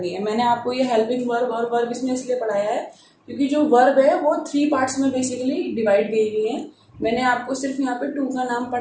है. मैंने आपको ये हेल्पिंग वर्ब और वर्ब इसमें इसलिए पढ़ाया है क्योंकि जो वर्ब है वो 3 पार्ट्स में बेसिकली डिवाइड की हुई है. मैंने आपको सिर्फ यहाँ पे 2 का नाम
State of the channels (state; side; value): identical; both; correlation 1.00